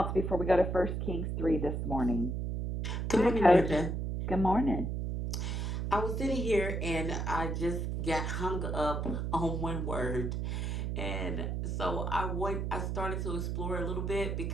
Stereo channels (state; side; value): noise; right; hum, 1 dB below the sound